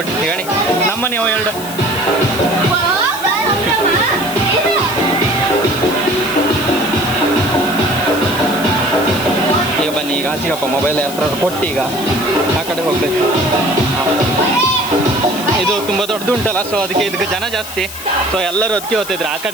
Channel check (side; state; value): left; noise; hiss, 11 dB below the sound